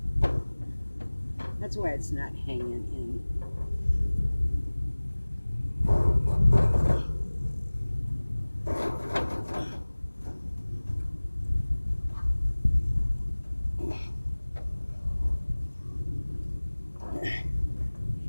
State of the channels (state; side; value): inverted; both; correlation -1.00